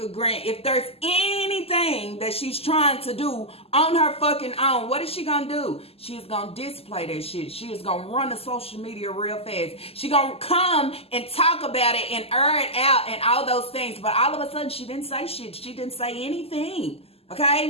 Grant, if there's anything that she's trying to do on her fucking own, what is she gonna do? She is gonna display that shit. She is gonna run the social media real fast. She gonna come and talk about it and air it out and all those things. But all of a sudden, she didn't say shit. She didn't say anything.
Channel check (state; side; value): late; right; 0.29 ms